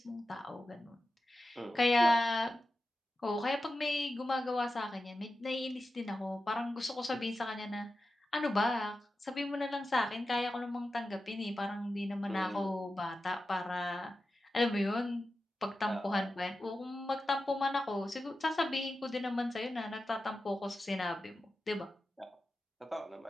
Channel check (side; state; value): both; normal; correlation 0.92